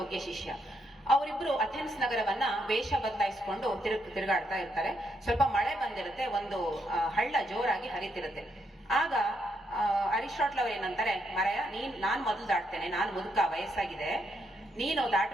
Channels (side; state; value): both; normal; correlation 0.77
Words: ಶಿಷ್ಯ. ಅವರಿಬ್ರು ಅಥೆನ್ಸ್ ನಗರವನ್ನ ವೇಷ ಬದಲಾಯಿಸಿಕೊಂಡು ತಿರುಗಾಡ್ತಾ ಇರ್ತಾರೆ. ಸ್ವಲ್ಪ ಮಳೆ ಬಂದಿರುತ್ತೆ, ಒಂದು ಹಳ್ಳ ಜೋರಾಗಿ ಹರಿತಿರುತ್ತೆ. ಆಗ ಅರಿಸ್ಟಾಟಲ್ ಅವ್ರು ಏನಂತಾರೆ, ಮರಯ ನಾನ್ ಮೊದಲು ದಾಟ್ತೇನೆ, ನಾನ್ ಮುದುಕ, ವಯಸ್ಸಾಗಿದೆ, ನೀನು